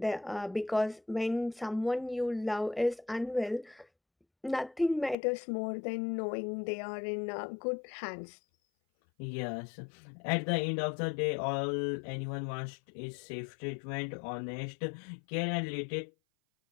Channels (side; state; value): right; drops out; at 5.2 s